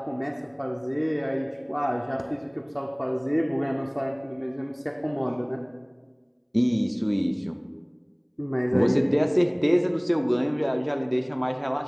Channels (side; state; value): both; identical; correlation 1.00